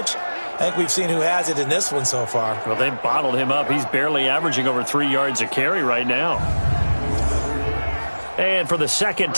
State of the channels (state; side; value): inverted; both; correlation -1.00